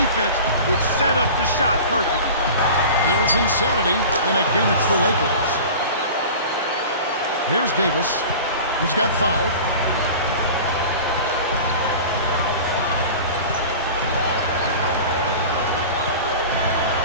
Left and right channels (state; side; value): inverted; both; correlation -0.37